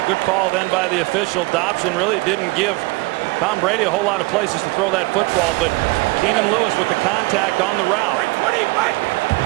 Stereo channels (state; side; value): quieter; left; 24.1 dB